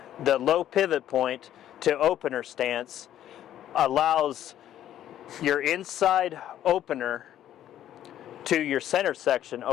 the low pivot point to opener stance allows your inside opener to your center section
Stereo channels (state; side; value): quieter; right; 11.6 dB